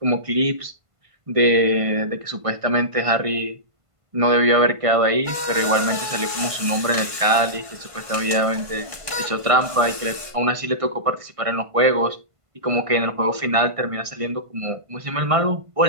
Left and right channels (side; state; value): left; late; 1.5 ms